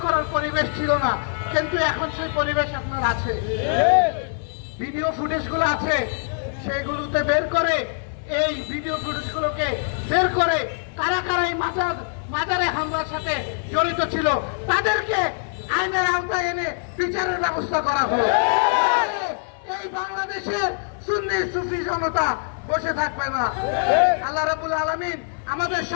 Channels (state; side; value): silent; right; 63 dB below the other